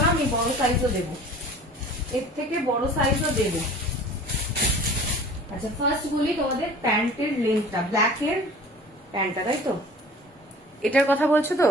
না, আমি বড় সাইজও দেবো, এর থেকে বড় সাইজও দেবো। আচ্ছা, ফার্স্ট বলি তোমাদের প্যান্টের লেন্থটা, ব্ল্যাকের প্যান্টটা, তাই তো? এটার কথা বলছো তো?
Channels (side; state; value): both; normal; correlation 0.45